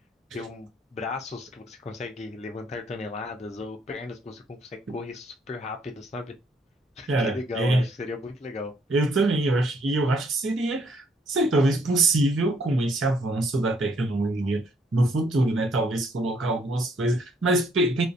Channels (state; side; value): normal; both; correlation 0.67